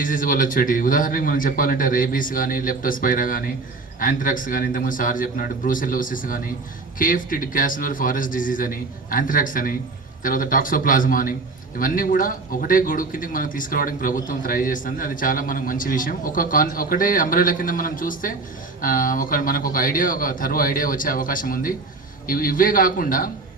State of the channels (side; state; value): left; quieter; 3.7 dB